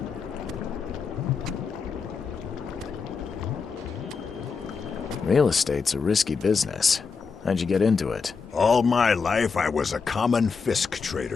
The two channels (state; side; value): quieter; right; 5.2 dB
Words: Real estate's a risky business. How'd you get into it? All my life I was a common Fisk